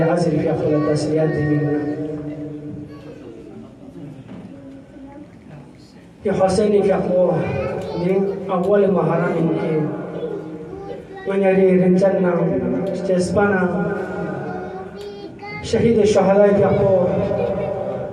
في أفضل التسليات منا في حسين في أقوى من أول مهارة ممكن من يري رنجنا استسبنا شهيد الشهداء في أقوى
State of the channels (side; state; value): both; identical; correlation 1.00